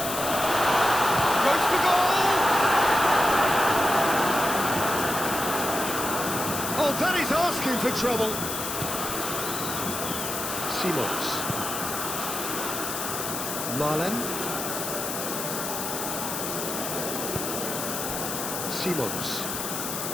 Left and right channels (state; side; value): noise; left; hiss, 4 dB below the sound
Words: Goes for goal! Oh, that is asking for trouble. Simons. Malen.